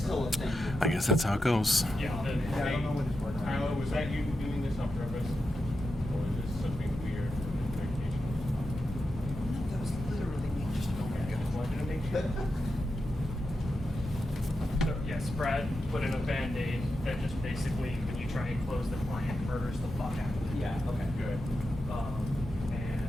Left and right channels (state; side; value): normal; both; correlation 0.88